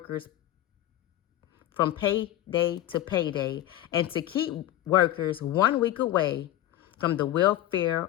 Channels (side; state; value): right; quieter; 13.8 dB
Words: from payday to payday and to keep workers 1 week away from the